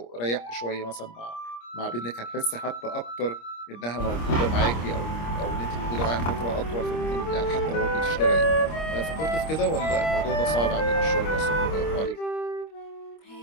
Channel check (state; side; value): late; right; 25 ms